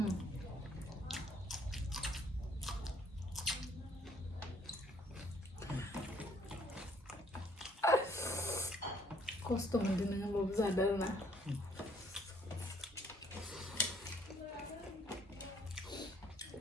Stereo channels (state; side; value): normal; both; correlation 0.64